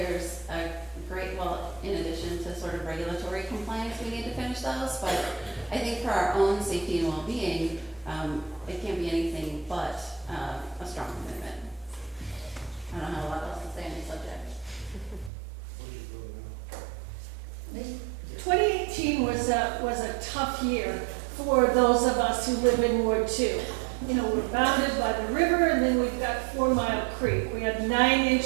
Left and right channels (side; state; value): left; drops out; at 15.3 s